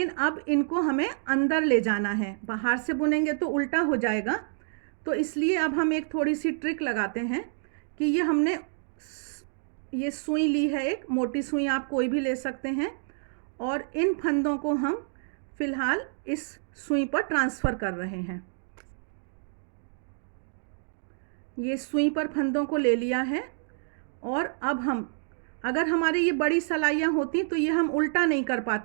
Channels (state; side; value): silent; left; digital silence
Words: अब इनको हमें अंदर ले जाना है, बाहर से बुनेंगे तो उल्टा हो जाएगा। तो इसलिए अब हम एक थोड़ी सी ट्रिक लगाते हैं कि ये हमने ये सुई ली है, एक मोटी सुई आप कोई भी ले सकते हैं, और इन फंदों को हम फिलहाल इस सुई पर ट्रांसफ़र कर रहे हैं। ये सुई पर फंदों को ले लिया है और अब हम, अगर हमारे ये बड़ी सलाइयाँ होती तो ये हम उल्टा नहीं कर